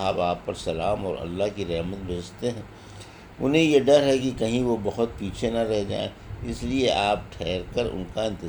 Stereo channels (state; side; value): identical; both; correlation 1.00